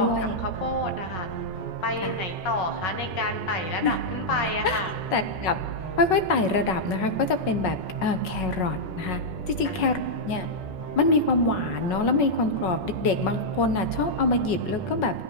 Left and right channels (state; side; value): late; right; 5.4 ms